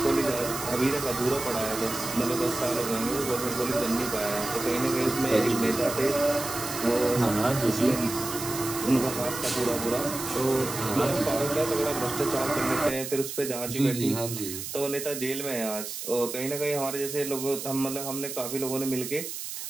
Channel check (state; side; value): noise; right; hiss, 7 dB below the sound